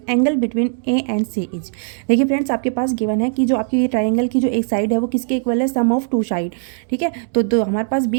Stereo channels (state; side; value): silent; left; 66 dB below the other